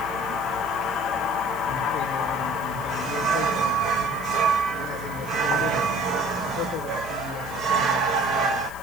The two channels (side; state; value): left; noise; hiss, 19 dB below the sound